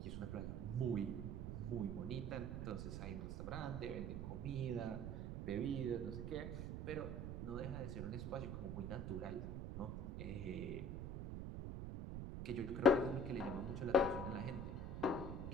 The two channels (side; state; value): right; noise; rumble, 4 dB below the sound